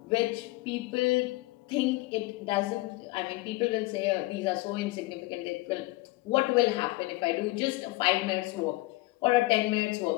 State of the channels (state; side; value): quieter; right; 20.9 dB